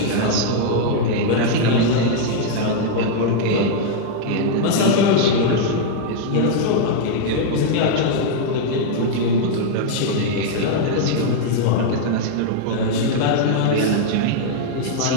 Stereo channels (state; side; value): different; both; correlation -0.01